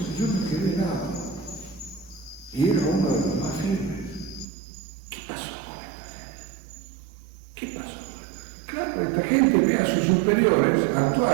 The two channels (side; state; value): left; drops out; at 4.5 s